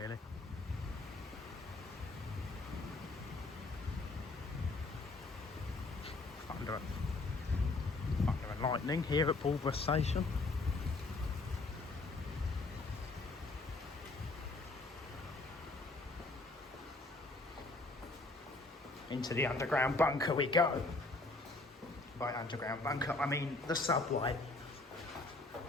Thunder and lightning here at Pulborough Station. Into the underground bunker we go. By underground bunker, I mean the subway.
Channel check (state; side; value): quieter; right; 3.2 dB